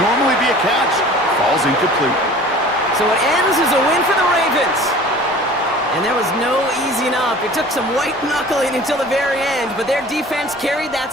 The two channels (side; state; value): both; normal; correlation 0.45